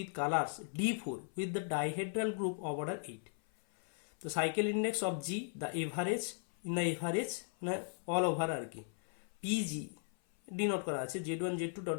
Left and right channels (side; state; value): right; silent; 53 dB below the other